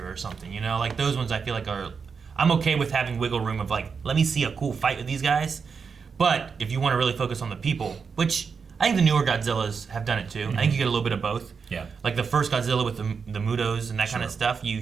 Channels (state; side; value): quieter; left; 5.7 dB